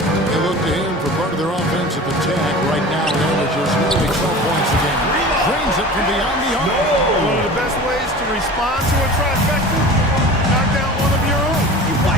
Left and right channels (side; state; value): both; normal; correlation 0.37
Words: look to him for part of their offensive attack. Right now, it averages nearly 12 points a game. Drains it from beyond the arc. One of the best ways to respond to a trifecta, knock down one of your own. You